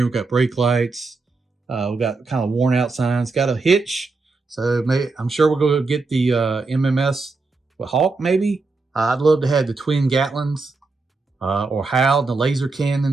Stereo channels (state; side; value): quieter; left; 3.8 dB